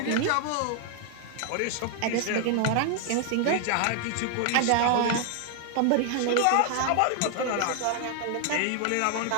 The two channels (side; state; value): both; different; correlation 0.00